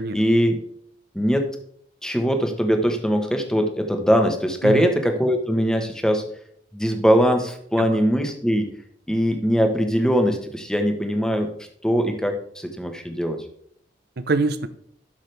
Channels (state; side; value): normal; both; correlation 0.82